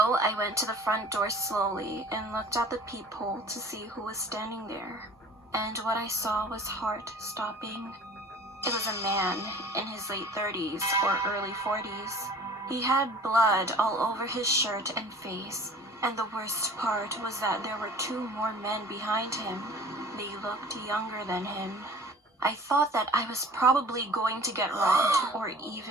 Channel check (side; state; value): both; normal; correlation 0.46